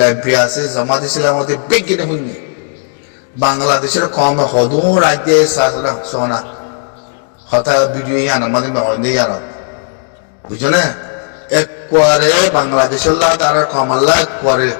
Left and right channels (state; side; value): silent; right; digital silence